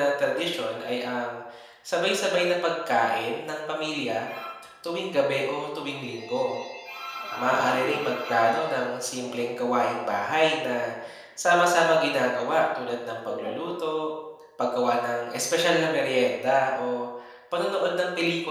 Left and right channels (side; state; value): both; identical; correlation 1.00